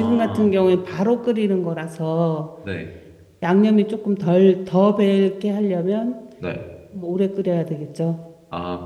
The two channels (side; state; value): both; identical; correlation 1.00